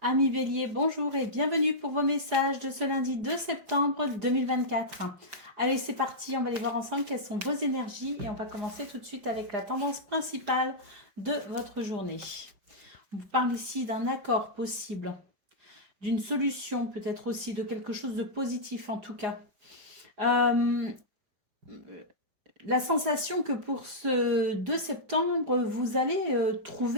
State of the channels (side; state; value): left; late; 4.8 ms